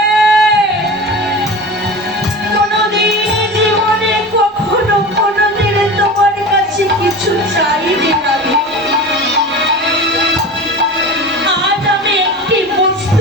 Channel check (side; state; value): both; normal; correlation 0.32